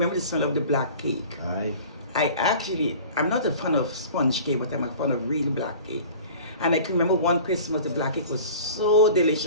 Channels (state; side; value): inverted; both; correlation -0.42